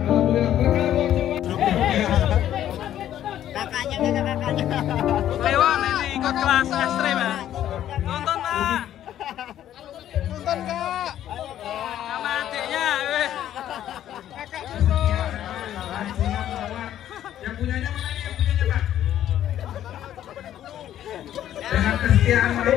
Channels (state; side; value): quieter; right; 11.5 dB